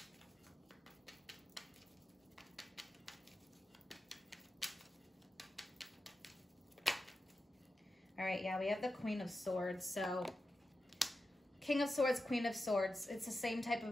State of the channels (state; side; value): normal; both; correlation 0.91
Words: All right, yeah, we have the Queen of Swords. So King of Swords, Queen of Swords. It's the same type